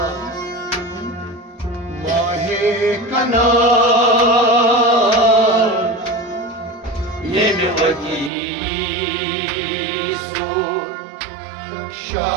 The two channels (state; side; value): drops out; left; at 8.3 s